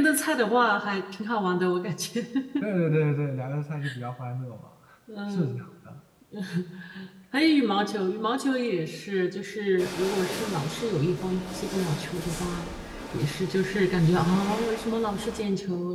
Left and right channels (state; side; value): identical; both; correlation 1.00